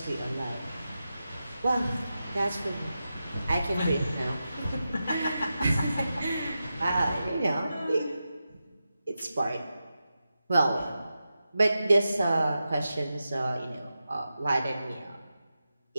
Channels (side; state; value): both; inverted; correlation -0.91